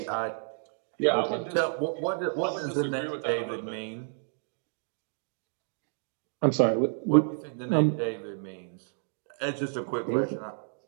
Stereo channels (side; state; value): left; silent; digital silence